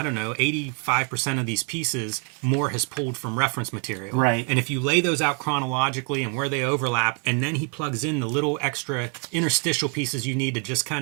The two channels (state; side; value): quieter; left; 37.3 dB